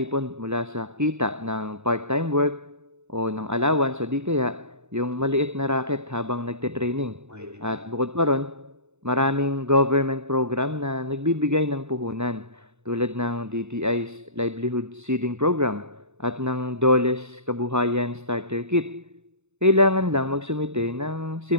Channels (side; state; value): left; late; 0.82 ms